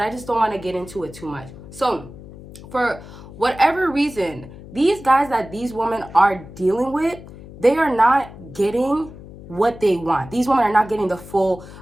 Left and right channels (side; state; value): left; noise; hum, 16 dB below the sound